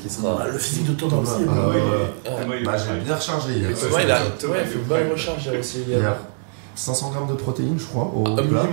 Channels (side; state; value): left; silent; 64 dB below the other